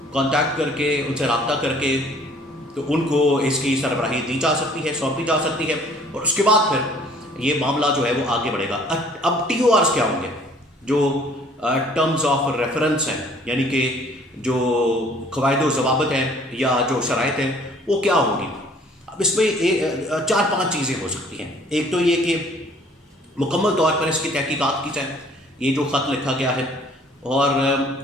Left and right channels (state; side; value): normal; both; correlation 0.56